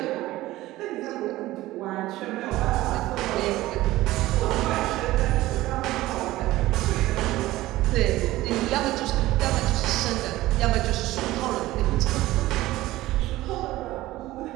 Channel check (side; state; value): left; quieter; 17.0 dB